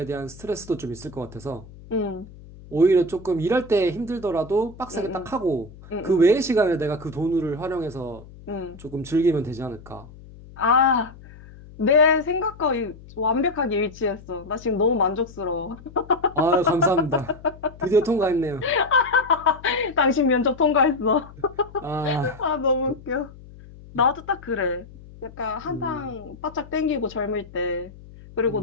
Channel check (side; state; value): left; noise; hum, 19 dB below the sound